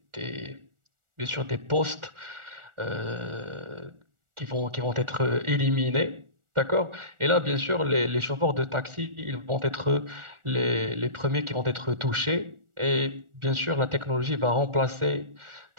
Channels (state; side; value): late; left; 1.4 ms